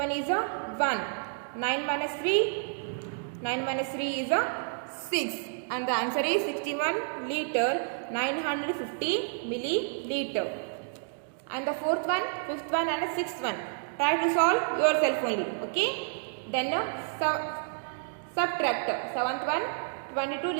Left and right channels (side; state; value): left; silent; digital silence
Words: is 1. 9 minus 3, 9 minus 3 is 6. And the answer is 61 liter, 950 milliliter. And the fourth one, fifth one and the sixth one, try to solve yourself only. Okay. Then subtract. Seventh one, 22